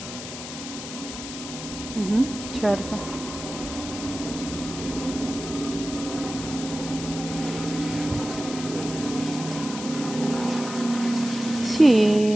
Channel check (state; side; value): noise; left; hiss, 9 dB below the sound